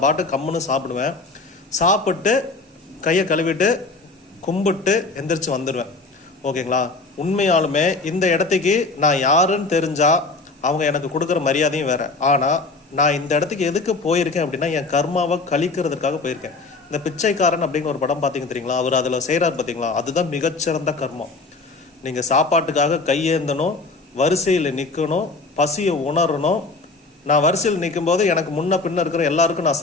பாட்டு கம்முன்னு சாப்பிடுவேன். சாப்பிட்டு கையை கழுவிட்டு கும்பிட்டு எந்திரிச்சு வந்துடுவேன். ஓகேங்களா? உண்மையாலுமே இந்த இடத்துக்கு நான் யாருன்னு தெரிஞ்சால் அவங்க எனக்கு கொடுக்குற மரியாதையும் வேறு. ஆனால் நான் இந்த இடத்துக்கு எதுக்கு போயிருக்கேன் அப்படின்னா, என் கர்மாவை கழிக்கிறதுக்காக போயிருக்கேன். இந்த பிச்சைக்காரன் அப்படின்னு ஒரு படம் பார்த்தீங்க தெரியுங்களா? அவர் அதில் செய்கிறார் பார்த்தீங்களா? அதுதான் மிகச்சிறந்த கர்மம். நீங்கள் சாப்பாட்டுக்காக கையேந்தணும், வரிசையில் நிற்கணும், பசியை உணரணும். நான் வரிசையில் நிற்கும் போது எனக்கு முன்ன பின்ன இருக்கிற எல்லாருக்கும் நான்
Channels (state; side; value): quieter; right; 3.6 dB